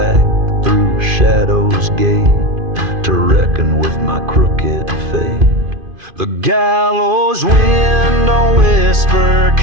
through Shadow's gate to reckon with my crooked fate. The gallows wind don't whisper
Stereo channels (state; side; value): late; left; 2.5 ms